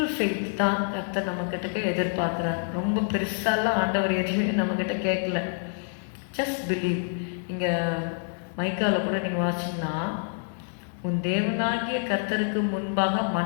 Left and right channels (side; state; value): right; silent; digital silence